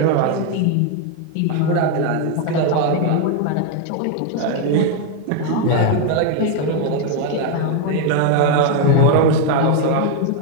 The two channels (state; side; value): different; both; correlation 0.01